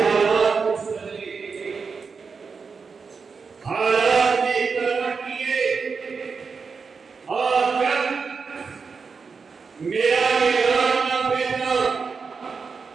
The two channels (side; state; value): left; quieter; 5.2 dB